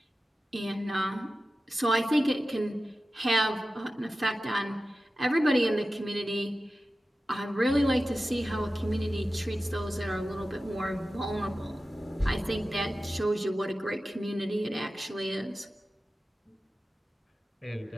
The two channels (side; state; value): both; normal; correlation 0.94